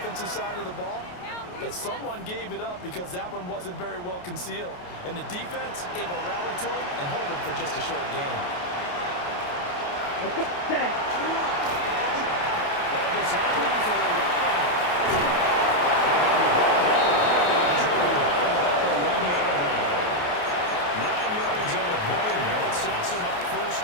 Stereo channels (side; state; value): right; late; 28 ms